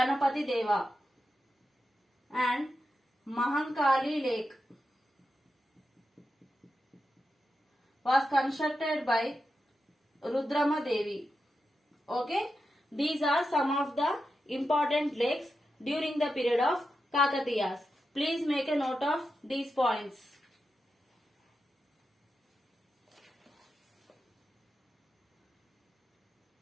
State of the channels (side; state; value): both; normal; correlation 0.89